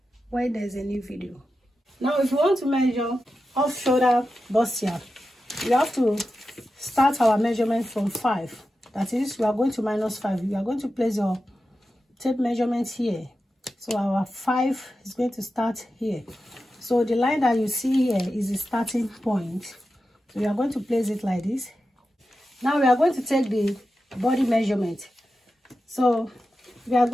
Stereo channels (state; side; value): normal; both; correlation 0.91